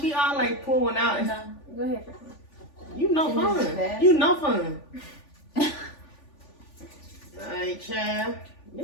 we all like pull one out? No. go ahead. You know fun. You know fun. Alright, child.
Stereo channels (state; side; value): late; right; 3.4 ms